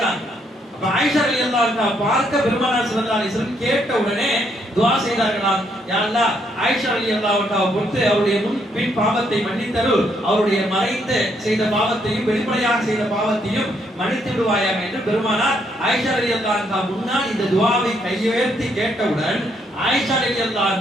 அப்ப ஆயிஷா ரலியல்லாஹு அன்ஹா பார்க்க பெருமானார் ஸல்லல்லாஹு அலைஹி வஸல்லம் கேட்ட உடனே துஆ செய்தார்களாம், யா அல்லாஹ் ஆயிஷா ரலியல்லாஹு அன்ஹா பொறுத்து அவருடைய முன் பின் பாவத்தை மன்னித்தரு, அவருடைய மறைத்து செய்த பாவத்தையும் வெளிப்படையாக செய்த பாவத்தையும் மன்னித்து விடுவாயாக என்று பெருமானார் ஆயிஷா ரலியல்லாஹு அன்ஹா முன்னால் இந்த துஆவை கையுயர்த்தி கேட்டவுடன் ஆயிஷா ரலியல்லாஹு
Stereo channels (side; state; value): both; normal; correlation 0.73